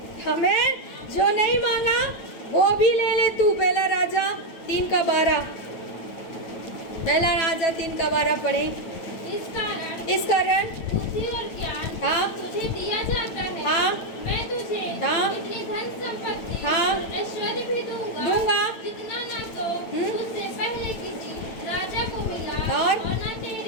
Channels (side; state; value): right; late; 9.0 ms